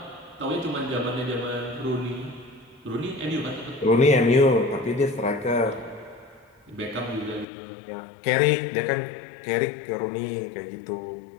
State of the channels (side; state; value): right; drops out; at 7.5 s